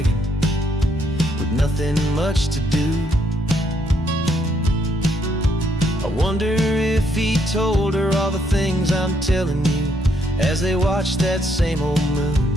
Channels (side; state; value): both; normal; correlation 0.73